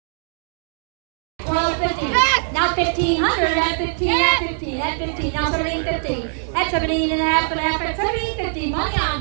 Now 1,500 at 15, at 15, at 15, now 1,750, at 17 and a half, at 1,750, money on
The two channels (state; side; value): silent; left; digital silence